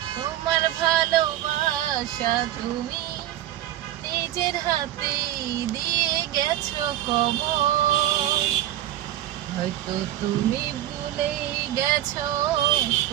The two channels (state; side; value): quieter; left; 13.0 dB